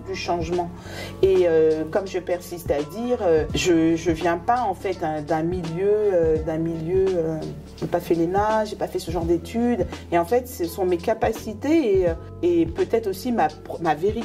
du changement. Et comme je persiste à dire, je viens pas en fait d'un milieu, j'ai pas fait l'ENA, j'ai pas fait ce genre d'études. Et en fait, ce sont mes capacités et peut-être aussi ma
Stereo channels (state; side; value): identical; both; correlation 1.00